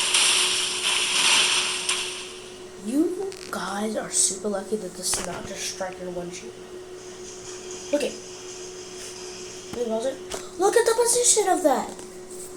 You guys are super lucky that this is not just strike your windshield. Okay. Look at the position of that.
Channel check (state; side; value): identical; both; correlation 1.00